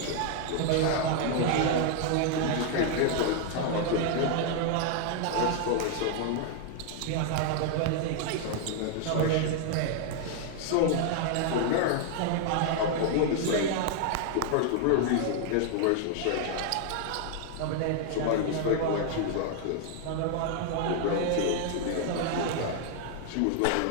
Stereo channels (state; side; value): different; both; correlation 0.00